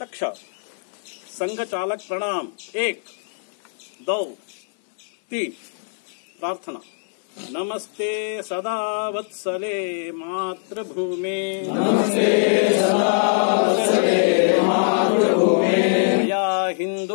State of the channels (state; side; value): silent; right; 61 dB below the other